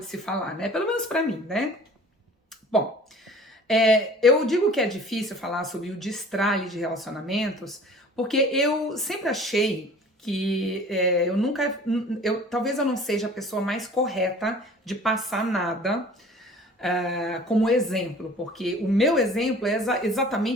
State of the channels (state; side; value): normal; both; correlation 0.47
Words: se falar, né? Pelo menos pra mim, né? Bom, eu digo que é difícil falar sobre o destralhe de relacionamentos, porque eu sempre achei que talvez eu não seja a pessoa mais correta de passar nada como exemplo, porque o meu exemplo é